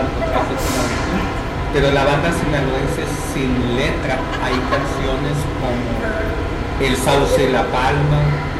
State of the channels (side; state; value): both; identical; correlation 1.00